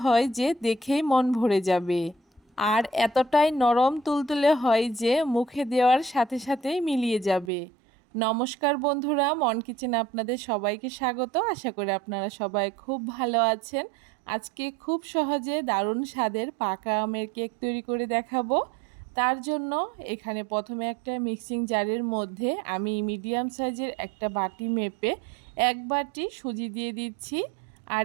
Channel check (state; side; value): drops out; left; at 7.5 s